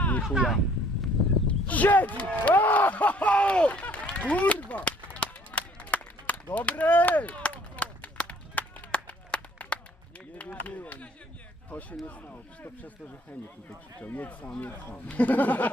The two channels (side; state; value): both; normal; correlation 0.59